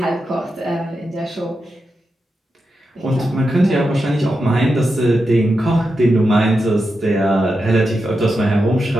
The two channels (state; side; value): normal; both; correlation 0.88